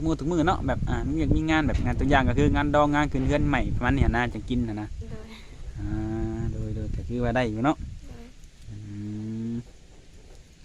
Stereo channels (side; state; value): both; identical; correlation 1.00